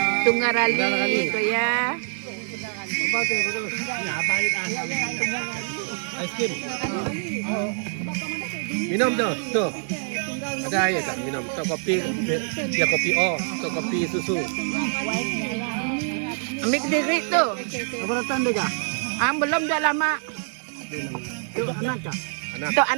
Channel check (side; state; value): left; silent; 62 dB below the other